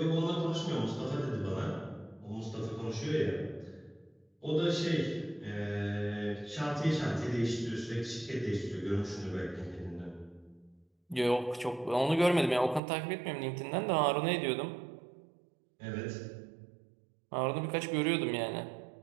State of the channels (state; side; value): drops out; left; at 12.8 s